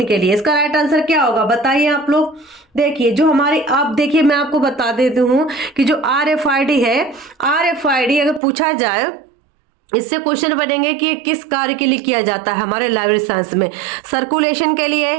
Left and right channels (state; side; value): drops out; left; at 8.4 s